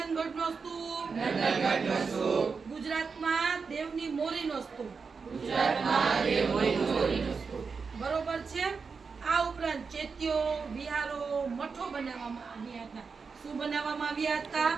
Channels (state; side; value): quieter; left; 5.2 dB